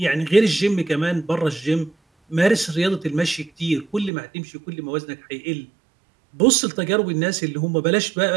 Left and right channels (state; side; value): drops out; left; at 4.1 s